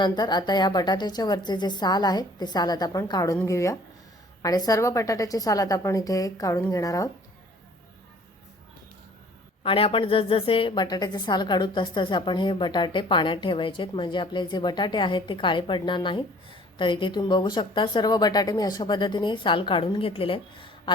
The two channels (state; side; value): normal; both; correlation 0.53